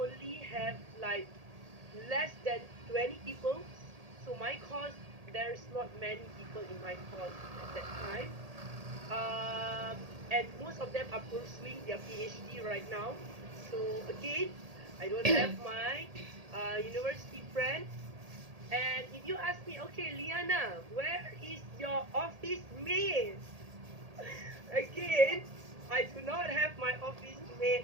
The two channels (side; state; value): left; late; 1.8 ms